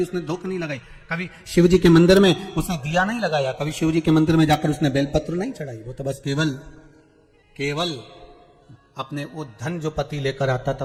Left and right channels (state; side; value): identical; both; correlation 1.00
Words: उसने धूप नहीं लगाई, कभी शिव जी के मंदिर में उसने दिया नहीं लगाया, कभी शिव जी के मंदिर में जाकर उसने बेलपत्र नहीं चढ़ाई। वो तो बस केवल अपने वो धन जो पति लेकर आता था